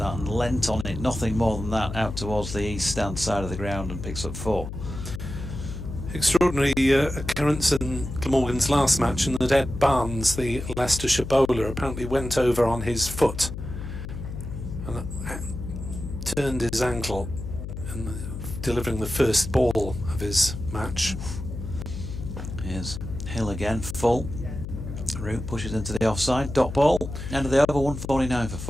and leant on it, nothing more than that, out towards the east stand side of the ground, and picks up 4. Extraordinary occurrence in Glamorgan's last match, in that Ed Barnes, the Leicestershire bowler, apparently went over on his foot and turned his ankle in delivering the first ball of his match. Here's Hill again, full. Root pushes into the offside, dot ball, end of the over, 149 for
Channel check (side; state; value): left; noise; hum, 8 dB below the sound